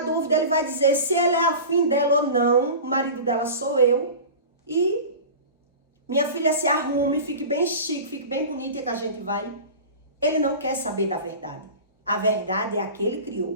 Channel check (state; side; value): inverted; both; correlation -0.34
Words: dúvida, ele vai dizer se ele é afim dela ou não. O marido dela sou eu. E minha filha se arrume, fique bem chique, fique bem bonita que a gente vai. Ele não quer saber da verdade. A verdade é a que ele